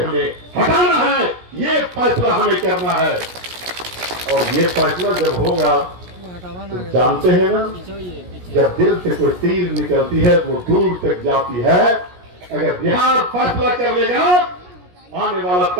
हमें हटाना है? ये फैसला हमें करना है। और ये फैसला जब होगा तो जानते हैं ना, जब दिल से कोई तीर निकलती है वो दूर तक जाती है। अगर बिहार फैसला कर लेगा, आने वाला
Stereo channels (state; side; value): late; left; 17 ms